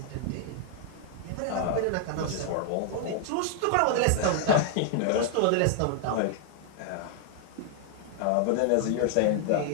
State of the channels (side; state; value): both; different; correlation 0.00